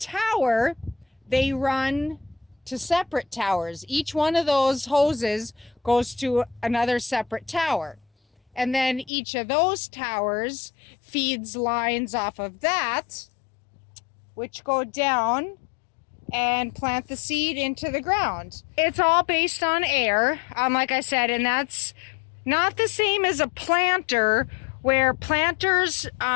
they run to separate towers. Each one of those hoses goes to another separate tower. And then each of those towers feeds lines off of that, which go down and plant the seed into the ground. It's all based on air, like I said, and that's not the same as a planter, where planters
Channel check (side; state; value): right; drops out; at 9.1 s